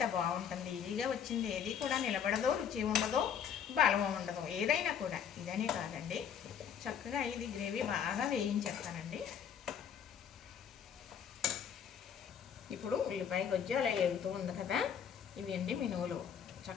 బాగుంటుంది. ఈజీగా వచ్చింది ఏది కూడా నిలబడదో, రుచి ఉండదో, బలం ఉండదు. ఏదైనా కూడా ఇదనే కాదండి. చక్కగా ఇది గ్రేవీ బాగా వేయించేస్తానండి. ఇప్పుడు ఉల్లిపాయ గొజ్జు అలా ఎగుతూ ఉంది కదా, ఇవి అండి మినువులు.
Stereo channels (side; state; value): right; quieter; 8.1 dB